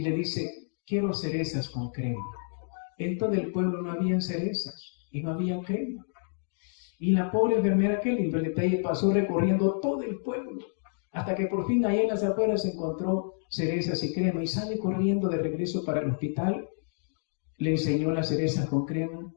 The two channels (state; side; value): silent; right; digital silence